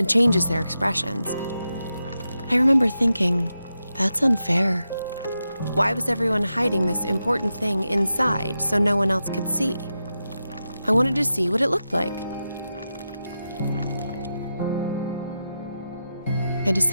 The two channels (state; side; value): inverted; both; correlation -0.89